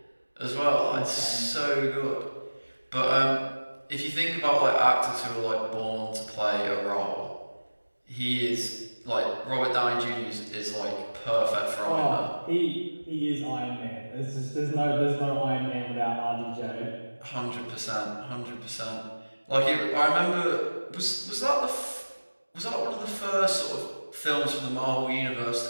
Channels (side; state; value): both; inverted; correlation -1.00